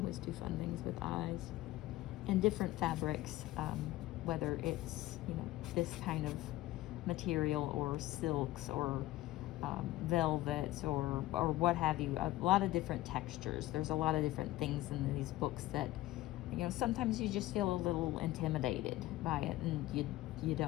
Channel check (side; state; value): right; quieter; 16.5 dB